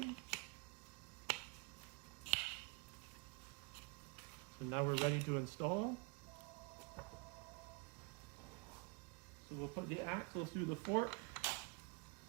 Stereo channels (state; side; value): quieter; left; 27.6 dB